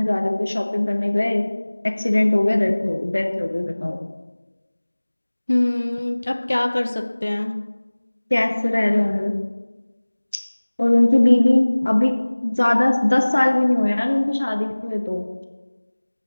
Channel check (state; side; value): inverted; both; correlation -1.00